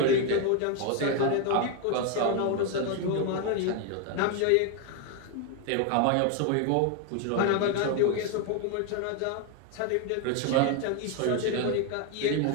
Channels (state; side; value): different; both; correlation 0.01